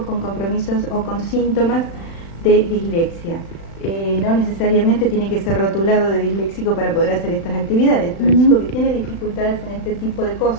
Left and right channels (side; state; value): right; late; 36 ms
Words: con compromisos o con síntomas de dislexia. No necesariamente tiene que ser rotulado de disléxico para poder hacer estas actividades, pero el chico que tiene dificultades en este tipo de